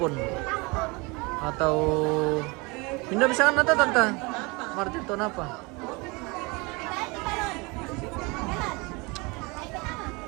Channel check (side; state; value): left; quieter; 27.0 dB